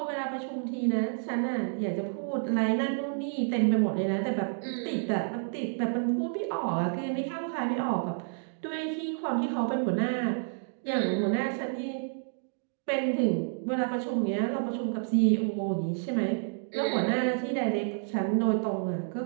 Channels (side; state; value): left; silent; digital silence